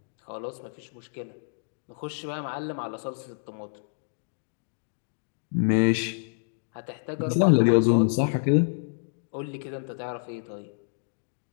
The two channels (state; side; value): silent; right; digital silence